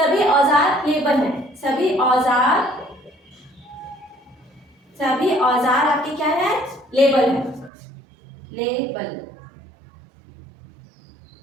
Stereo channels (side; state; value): left; drops out; at 7.7 s